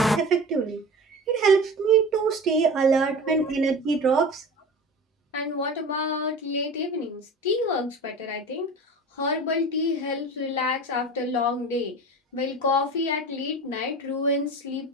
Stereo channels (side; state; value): both; normal; correlation 0.34